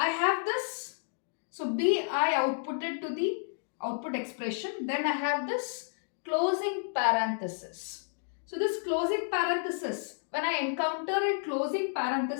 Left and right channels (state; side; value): silent; right; digital silence